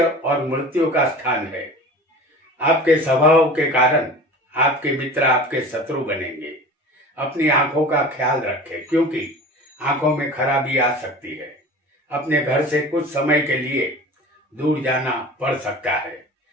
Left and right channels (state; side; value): normal; both; correlation 0.38